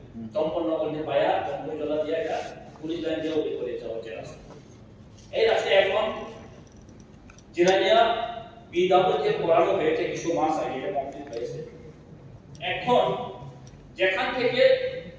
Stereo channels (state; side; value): identical; both; correlation 1.00